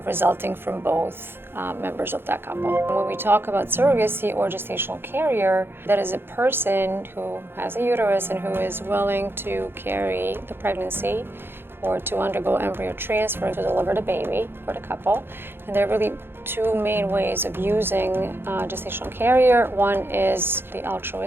resulting from both members of that couple. When we talk about surrogacy or gestational carrier, that is a person who has a uterus and who is willing to carry the pregnancy or to undergo embryo transfer to deliver the baby for the couple. And there are really two main ways of using gestational carrier. One is the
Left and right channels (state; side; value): late; left; 0.11 ms